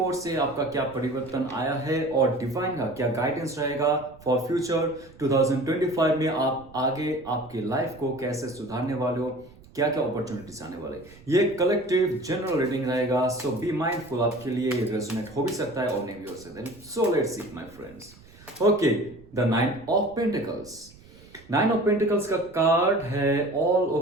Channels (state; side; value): noise; right; rumble, 23 dB below the sound